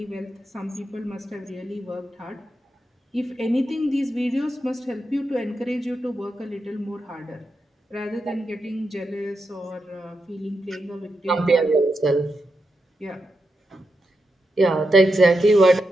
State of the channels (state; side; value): normal; both; correlation 0.86